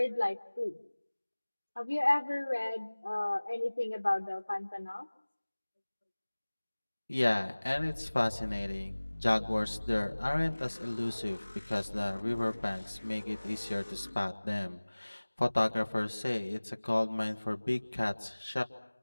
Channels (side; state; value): both; inverted; correlation -1.00